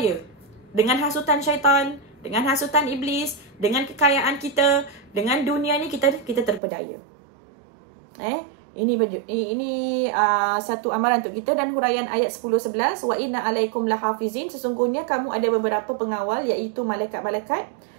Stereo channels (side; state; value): left; drops out; at 6.6 s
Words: dengan hasutan syaitan, dengan hasutan iblis, dengan kekayaan kita, dengan dunia ni kita terpedaya. Ini satu amaran untuk kita. Dan huraian ayat 10-11, wa inna alaikum lahafizin, sesungguhnya kamu ada beberapa pengawal, iaitu malaikat-malaikat